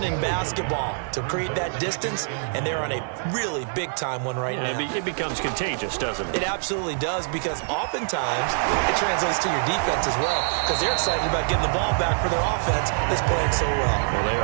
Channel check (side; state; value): left; silent; digital silence